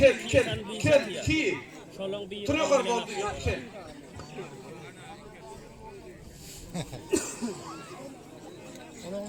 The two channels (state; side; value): identical; both; correlation 1.00